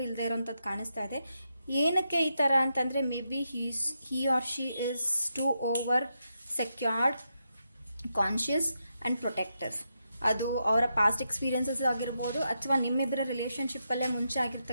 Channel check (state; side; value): inverted; both; correlation -0.84